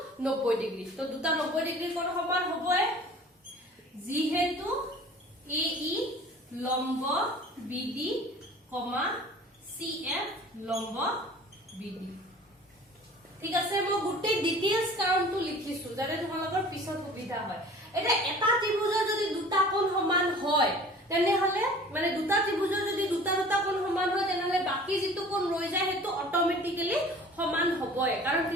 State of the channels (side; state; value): both; normal; correlation 0.45